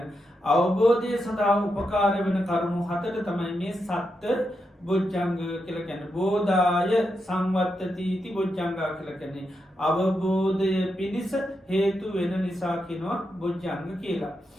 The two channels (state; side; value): normal; both; correlation 0.85